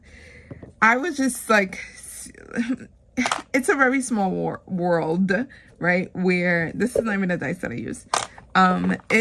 I was just like, it's a very small world, right? Where this is not even a dice that I use.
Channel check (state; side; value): identical; both; correlation 1.00